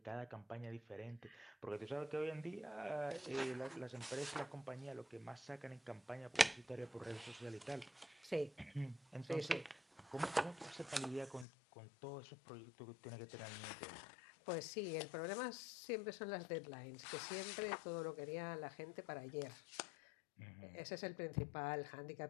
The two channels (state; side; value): drops out; right; at 11.5 s